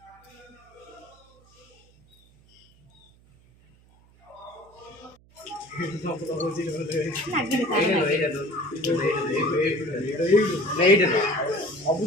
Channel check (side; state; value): right; noise; hum, 29 dB below the sound